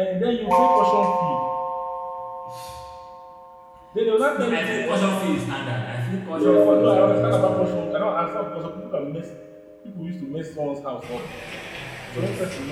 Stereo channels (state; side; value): identical; both; correlation 1.00